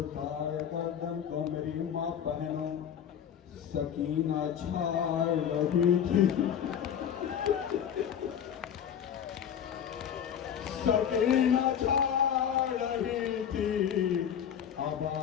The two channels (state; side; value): quieter; right; 8.8 dB